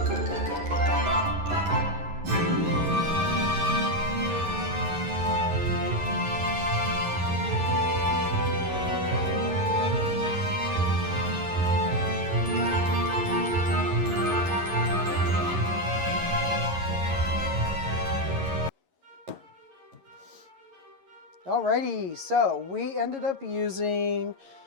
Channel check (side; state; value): left; late; 11 ms